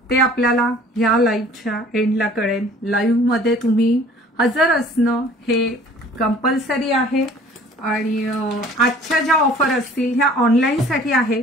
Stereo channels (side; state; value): both; normal; correlation 0.51